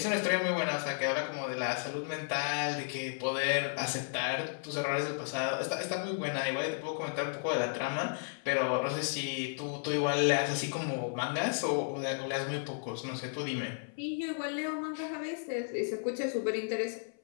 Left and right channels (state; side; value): silent; right; 55 dB below the other